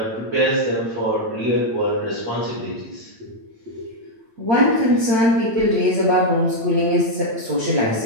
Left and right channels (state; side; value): late; left; 8.9 ms